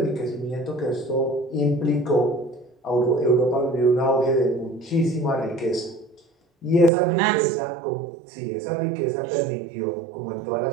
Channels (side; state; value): left; drops out; at 6.9 s